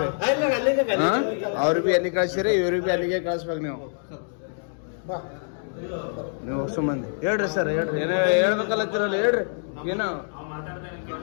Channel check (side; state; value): right; silent; digital silence